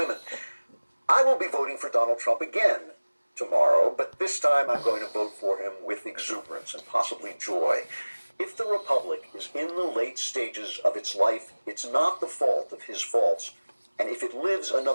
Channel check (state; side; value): inverted; both; correlation -1.00